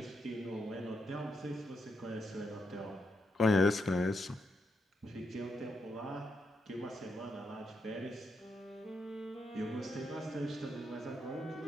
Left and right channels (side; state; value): both; normal; correlation 0.81